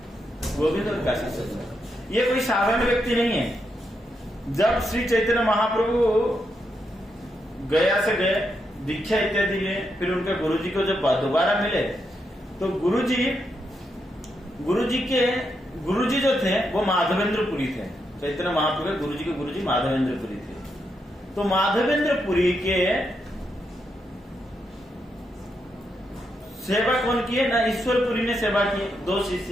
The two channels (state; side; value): normal; both; correlation 0.82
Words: गोविंद और काशीश्वर पंडित। ये कोई साधारण व्यक्ति नहीं है। जब श्री चैतन्य महाप्रभु गया से गए, दीक्षा इत्यादि लिए, फिर उनके गुरुजी को जब दोबारा मिले, तो गुरुजी जो थे वो माधवेंद्रपुरी थे। चैतन्य महाप्रभु गुरुजी के गुरुजी माधवेंद्रपुरी थे। तो माधवेंद्रपुरी के सेवा कौन की है ना, ईश्वरपुरी ने सेवा की। दो